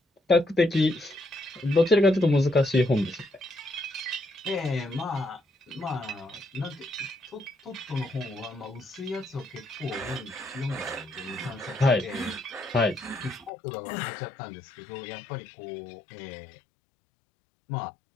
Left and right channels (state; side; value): drops out; right; at 13.5 s